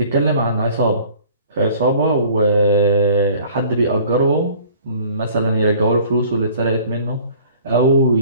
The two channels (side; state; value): both; inverted; correlation -0.50